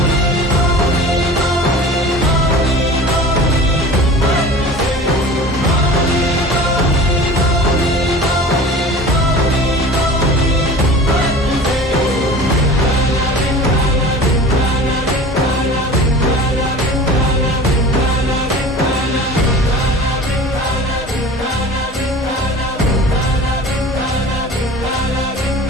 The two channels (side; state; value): both; normal; correlation 0.39